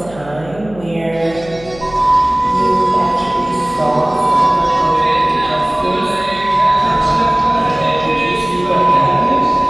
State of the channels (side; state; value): left; noise; hum, 19 dB below the sound